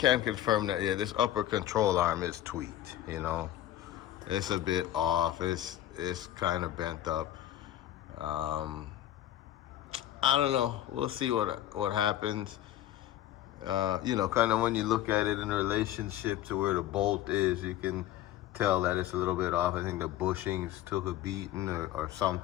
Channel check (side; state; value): right; quieter; 13.0 dB